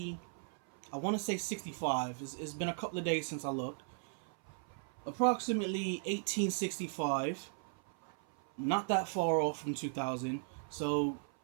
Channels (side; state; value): left; silent; 53 dB below the other